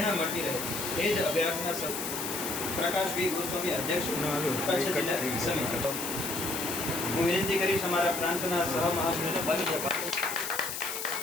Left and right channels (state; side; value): noise; left; hiss, 5 dB below the sound